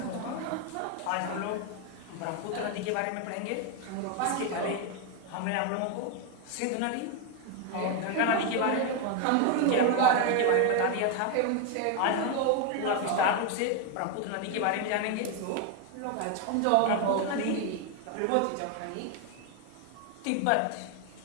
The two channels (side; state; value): both; different; correlation 0.01